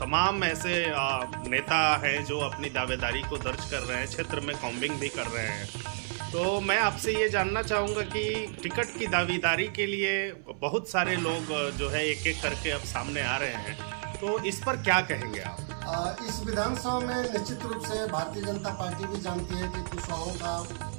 तमाम ऐसे नेता हैं जो अपनी दावेदारी को दर्ज कर रहे हैं, क्षेत्र में कॉम्बिंग भी कर रहे हैं। तो मैं आपसे ये जानना चाहूँगा कि टिकट की दावेदारी के लिए बहुत सारे लोग जो है एक एक करके अब सामने आ रहे हैं, तो इस पर क्या कहेंगे आप? इस विधानसभा में निश्चित रूप से भारतीय जनता पार्टी भी जानती है कि कुशवाहों का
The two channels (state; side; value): silent; left; 57 dB below the other